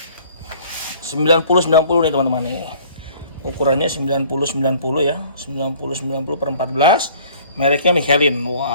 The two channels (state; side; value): inverted; both; correlation -0.53